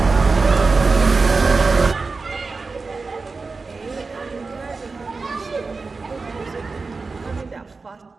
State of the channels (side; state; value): left; quieter; 4.1 dB